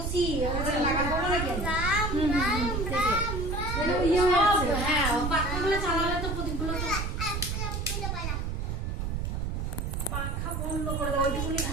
লাগাবো না কেন? হ্যাঁ পাখাগুলো চালালে তো প্রদীপগুলো পাখা বন্ধ করে দাও, ওইটুকুনি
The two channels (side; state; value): right; noise; rumble, 2 dB below the sound